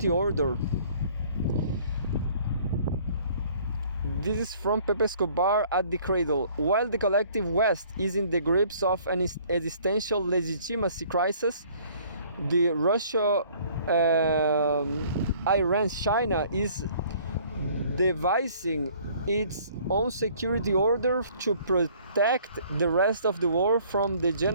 order. This is from Pepe Escobar at the cradle. While the collective West is in the grips of an existential legitimacy crisis, the Russia, Iran, China is devising its own security order to protect the rest of the world from the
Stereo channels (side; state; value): both; inverted; correlation -0.56